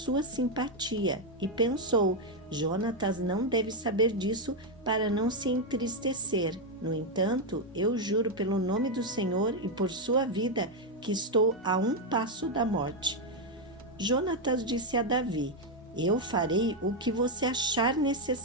simpatia. E pensou: Jonatas não deve saber disso para não se entristecer. No entanto, eu juro pelo nome do Senhor e por sua vida que estou a um passo da morte. Jonatas disse a Davi: eu farei o que você achar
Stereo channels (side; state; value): both; normal; correlation 0.03